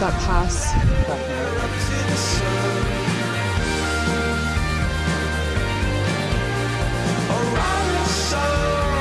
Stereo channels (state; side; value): identical; both; correlation 1.00